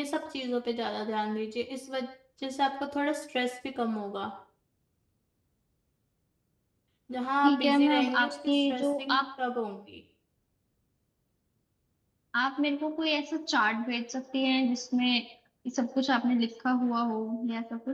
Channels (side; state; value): both; identical; correlation 1.00